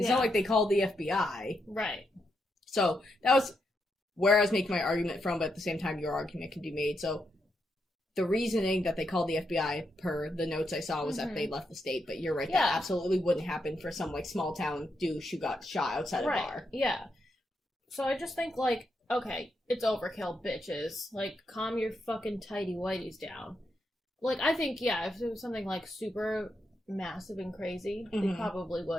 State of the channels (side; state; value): both; normal; correlation 0.82